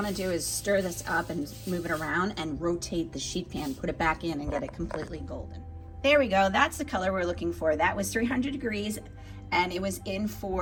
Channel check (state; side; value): identical; both; correlation 1.00